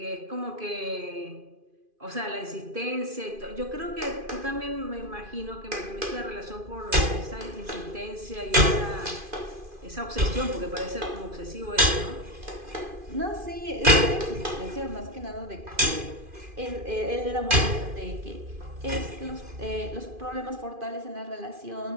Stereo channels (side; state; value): left; late; 2.5 ms